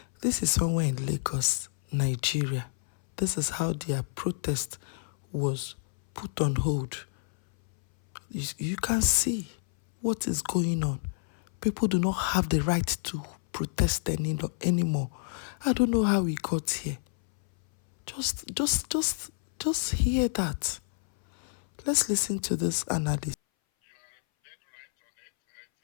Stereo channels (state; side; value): silent; right; 59 dB below the other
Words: This is somewhere in Lagos, Nigeria. This is how their protest was put on hold. You can see what is going on. People do not have the right to protest anymore. I don't know how we got here. Just hear that. Let's listen to this analysis. You are dead right on it. It